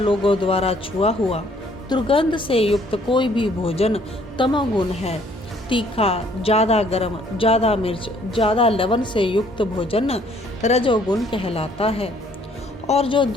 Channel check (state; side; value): normal; both; correlation 0.62